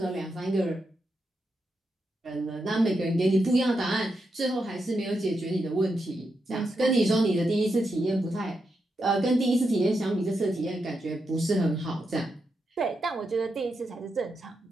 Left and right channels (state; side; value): normal; both; correlation 0.85